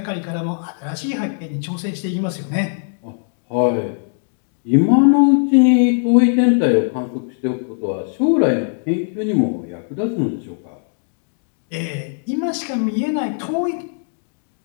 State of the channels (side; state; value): right; silent; digital silence